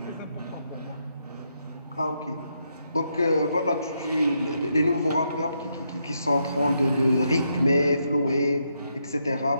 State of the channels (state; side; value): inverted; both; correlation -0.79